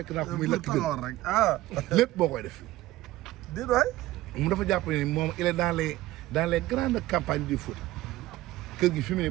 naa ko muy lekk taxawoon rek lépp boo koy def. déedéet waay. mu dafa jàpp ne moom il est dans les grandes campagnes du foot. kër gi fi mu ne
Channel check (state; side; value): quieter; left; 16.6 dB